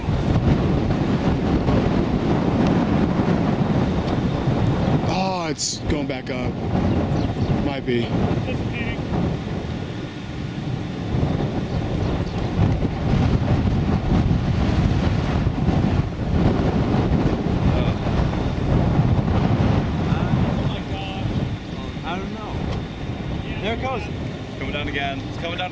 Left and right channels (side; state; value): both; identical; correlation 1.00